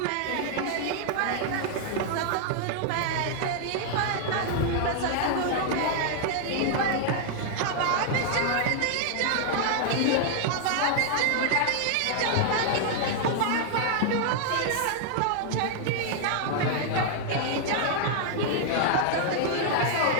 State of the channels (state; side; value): different; both; correlation 0.00